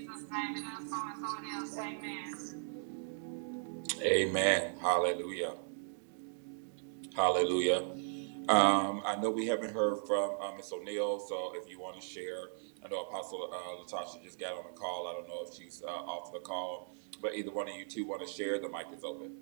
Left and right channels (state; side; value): silent; left; digital silence